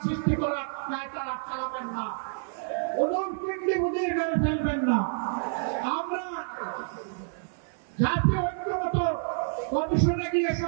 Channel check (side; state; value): left; silent; digital silence